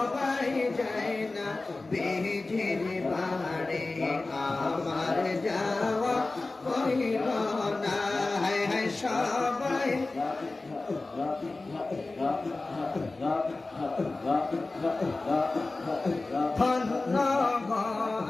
যায় না বিজির বাড়ি আমার যাওয়া হইল না। হায় হায় সবাই ধন্য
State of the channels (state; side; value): quieter; right; 3.3 dB